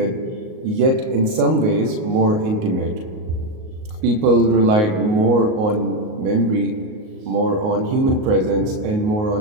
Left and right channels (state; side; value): late; left; 38 ms